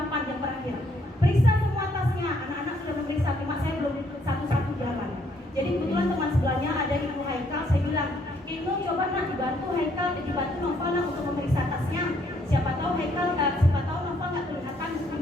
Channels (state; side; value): normal; both; correlation 0.68